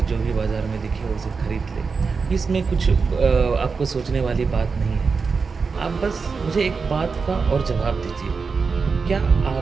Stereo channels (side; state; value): left; quieter; 4.9 dB